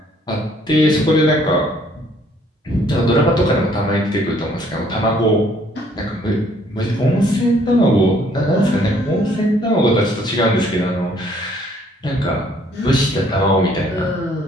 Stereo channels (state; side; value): normal; both; correlation 0.62